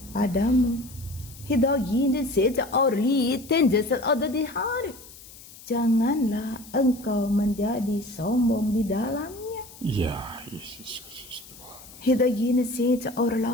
padamu, hidup ini saja orli tenjasal ada di hari. Janganlah engkau menjadi sombong di dalamnya. Ya, Yesus Kristus. Hidayini saja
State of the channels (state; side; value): noise; left; hiss, 19 dB below the sound